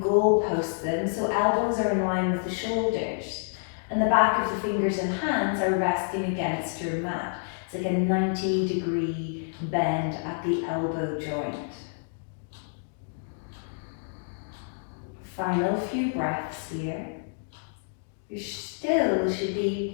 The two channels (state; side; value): silent; right; digital silence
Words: goalpost them so elbows are in line with the shoulders. And the back of the fingers and hands are resting against your mat. It's like a 90-degree bend at the elbow joint. Final few breaths here. There still should